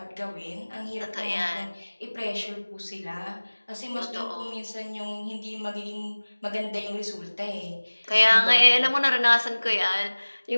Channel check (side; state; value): both; inverted; correlation -1.00